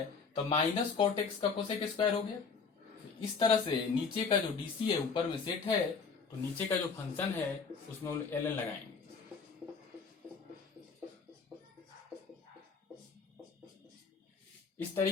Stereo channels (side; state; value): right; quieter; 5.2 dB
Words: तो माइनस cot x का cosec स्क्वायर हो गया। इस तरह से नीचे का जो डीसी है ऊपर में सेट है तो नीचे का जो फंक्शन है उसमें ln लगाएंगे। इस